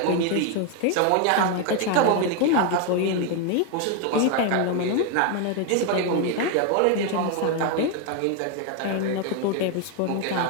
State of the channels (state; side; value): different; both; correlation 0.01